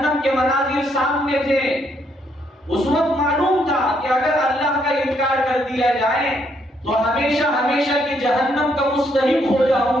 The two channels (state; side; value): normal; both; correlation 0.72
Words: کے مناظر سامنے تھے، اس وقت معلوم تھا کہ اگر اللہ کا انکار کر دیا جائے تو ہمیشہ ہمیشہ کی جہنم کا مستحق ہو جاؤں